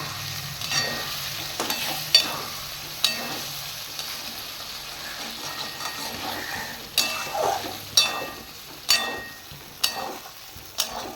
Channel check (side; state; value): both; identical; correlation 1.00